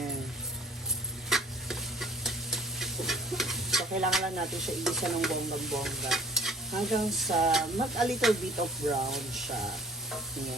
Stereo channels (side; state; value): both; normal; correlation 0.53